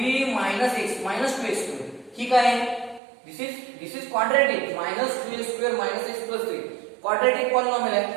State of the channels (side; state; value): left; drops out; at 3.0 s